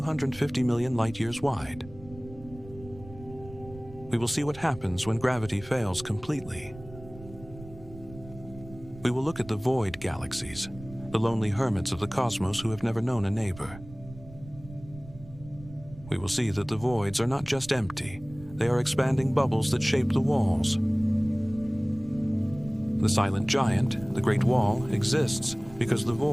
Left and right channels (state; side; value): noise; right; rumble, 17 dB below the sound